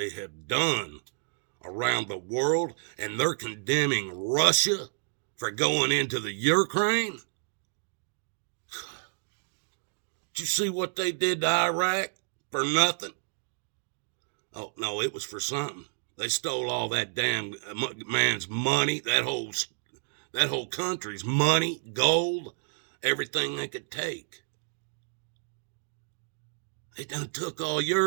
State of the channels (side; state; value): left; silent; digital silence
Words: have done around the world, and they're condemning Russia for going into the Ukraine. Did you see what they did to Iraq for nothing? Oh, no, it was for something. They stole all that damn man's money, that whole country's money, gold, everything they could take. They done took all